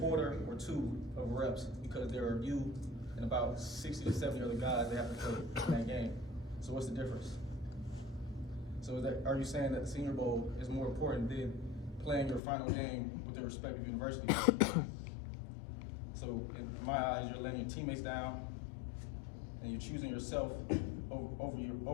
or two of reps because there are you and about 60 to 70 other guys that have to play in that game. So what's the difference? So are you saying that the Senior Bowl is more important than playing your final game with their respective universities? So in my eyes, you're letting your teammates down, and you're choosing yourself over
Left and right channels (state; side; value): drops out; right; at 12.4 s